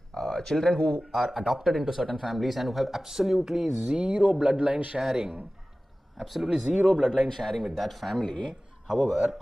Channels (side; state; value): both; normal; correlation 0.97